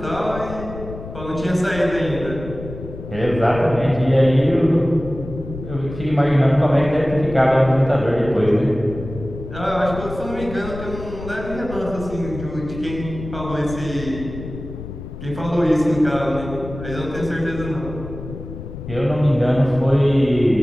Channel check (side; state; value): left; noise; rumble, 11 dB below the sound